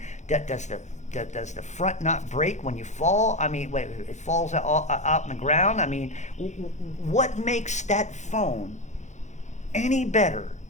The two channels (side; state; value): right; late; 0.34 ms